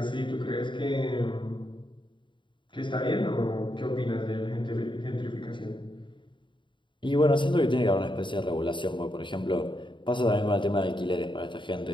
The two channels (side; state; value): right; late; 0.23 ms